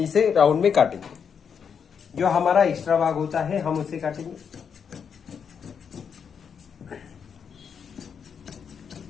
राउंड में काटेंगे। जो हमारा एक्स्ट्रा भाग होता है हम उसे काटेंगे।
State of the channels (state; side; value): quieter; right; 7.0 dB